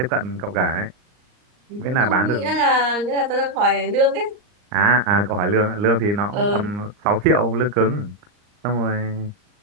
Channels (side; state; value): left; late; 39 ms